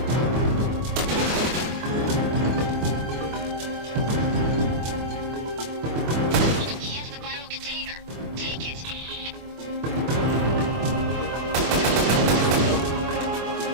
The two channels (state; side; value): late; left; 24 ms